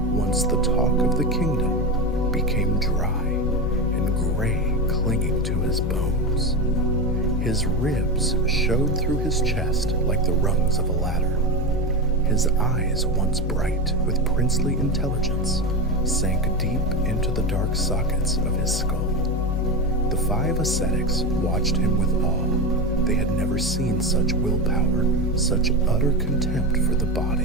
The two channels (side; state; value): both; normal; correlation 0.19